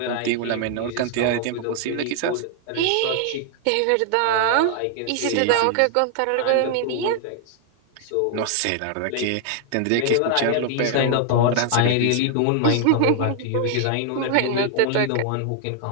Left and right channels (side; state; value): both; different; correlation 0.00